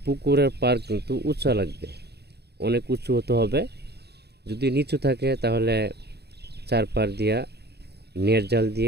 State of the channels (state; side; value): late; left; 0.48 ms